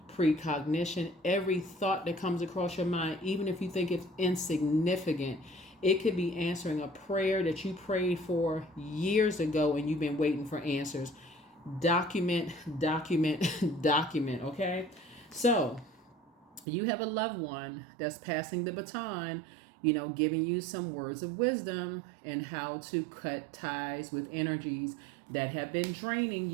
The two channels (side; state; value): left; drops out; at 16.7 s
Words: precognition, every thought that comes across your mind, even if you think it's insignificant. It could be answering a prayer that you prayed for years ago and you've been waiting for answers. Document, okay? So you have a loved one that's passing the baton, giving you some words of wisdom and how to cut ties with energies that have been draining